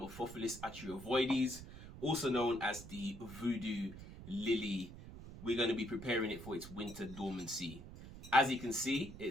Atroviridis, also known as the Voodoo lily. We're going to be preparing it for its winter dormancy. As you can see,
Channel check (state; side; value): noise; right; rumble, 13 dB below the sound